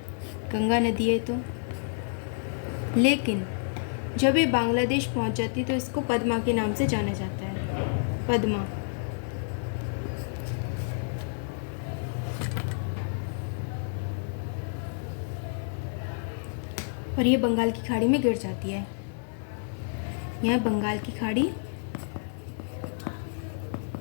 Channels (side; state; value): right; silent; 58 dB below the other